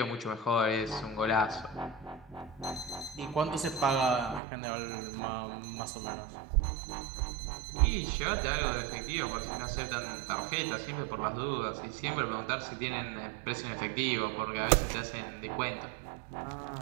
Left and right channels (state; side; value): drops out; left; at 4.4 s